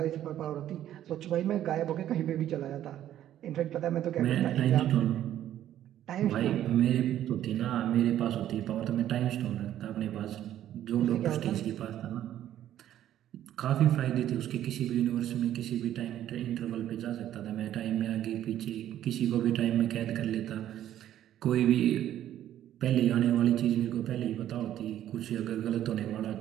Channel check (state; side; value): quieter; left; 11.8 dB